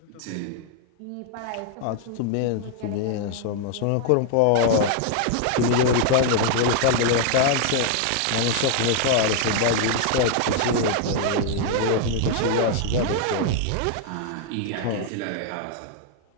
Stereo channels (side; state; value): both; different; correlation 0.00